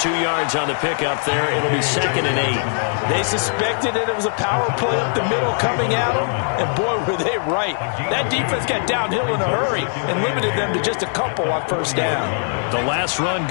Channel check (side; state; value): right; silent; 65 dB below the other